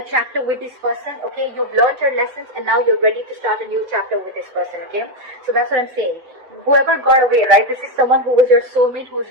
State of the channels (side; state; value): left; late; 7.9 ms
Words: chapter with this person, okay? You've learned your lessons and now you're ready to start a new chapter with this person, okay? So that's what I'm saying. Whoever got away, right? This is someone who was your soulmate, who's